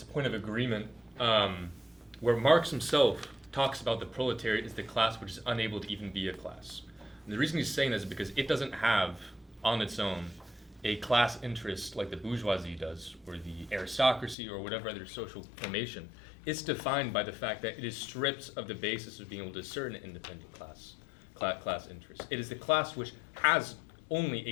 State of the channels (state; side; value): drops out; right; at 14.4 s